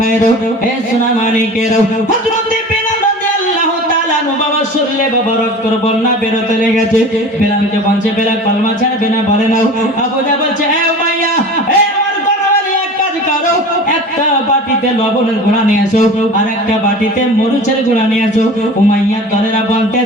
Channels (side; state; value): both; normal; correlation 0.37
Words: হে সোনা মানিকেরা, হযরতে বেলাল রাদিয়াল্লাহু তাআলা আনহু বাবা শরীরে বাবা রক্তের বন্যা বেরোতে লেগেছে। বেলালকে বলছে, বেলাল কলমা ছাড়বে না? বলে নাও। আবু জাহল বলছে, এ উমাইয়া, এ আমার গণবালি এক কাজ করো, একটা বাটিতে লবণের গুঁড়া নিয়ে এসো আর একটা বাটিতে মরিচের গুঁড়া নিয়ে এসো। উমাইয়ার দলেরা